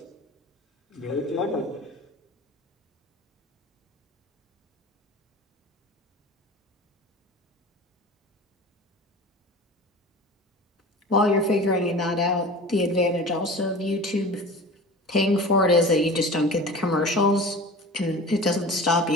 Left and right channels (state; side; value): normal; both; correlation 0.37